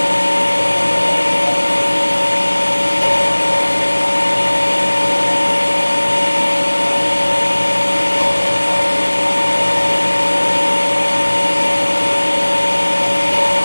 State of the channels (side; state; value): both; inverted; correlation -1.00